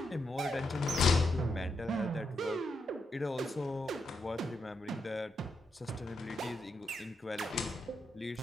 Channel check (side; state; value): both; normal; correlation 0.82